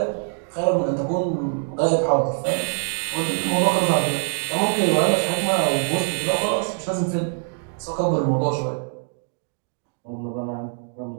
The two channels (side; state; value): left; silent; digital silence